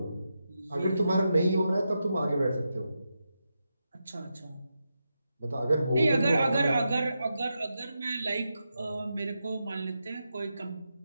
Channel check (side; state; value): both; inverted; correlation -0.87